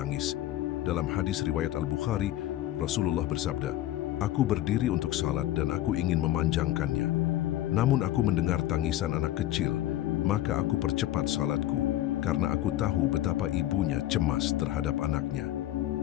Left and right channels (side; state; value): right; quieter; 14.0 dB